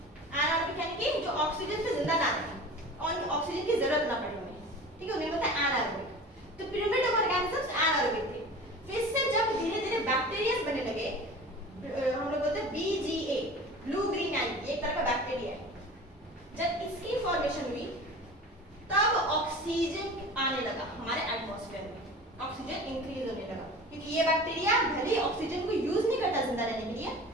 एनारोबिक यानी कि जो ऑक्सीजन पे जिंदा ना रहे और ऑक्सीजन की जरूरत ना पड़े उन्हें, ठीक है, उन्हें बताया एनारोबिक। तो प्रिमिटिव ऑर्गेनिजम्स एनारोबिक थे। फिर से जब धीरे धीरे बैक्टीरिया बनने लगे, हम लोग बोलते हैं BGA, ब्लू ग्रीन एल्गी, एक तरह का बैक्टीरिया है। जब इसकी फॉर्मेशन हुई तब ऑक्सीजन आने लगा हमारे एटमॉस्फेयर में। ऑक्सीजन इंक्रीज होने लगा, क्योंकि ये बैक्टीरिया भले ऑक्सीजन को यूज नहीं करता जिंदा रहने के लिए,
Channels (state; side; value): normal; both; correlation 0.38